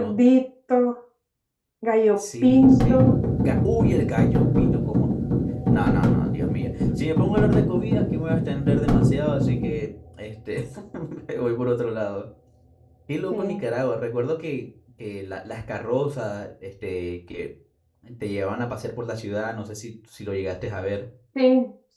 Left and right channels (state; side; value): identical; both; correlation 1.00